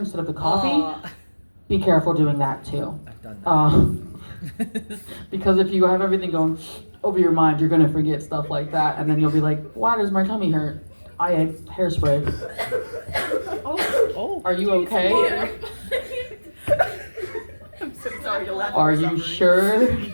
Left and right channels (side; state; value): both; inverted; correlation -1.00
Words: of the coffee. Aw. Be careful doing that too. I've done that. Because if you have everything going over your mind, you're gonna forget stuff like that, and then you'll be like, "Why does my tummy hurt? I ate hairspray." Oh. Are you okay? I'm so sorry to laugh. Are you sure?